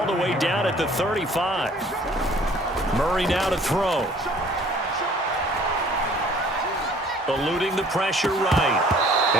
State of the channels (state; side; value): normal; both; correlation 0.54